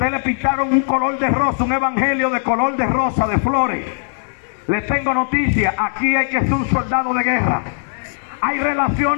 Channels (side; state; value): right; silent; 67 dB below the other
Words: le pintaron un color de rosa, un evangelio de color de rosa, de flores. Les tengo noticia, aquí hay que ser un soldado de guerra. Hay